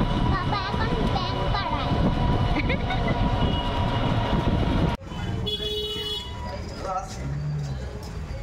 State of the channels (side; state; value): both; identical; correlation 1.00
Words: বাবা এখন ব্যাংক করায়।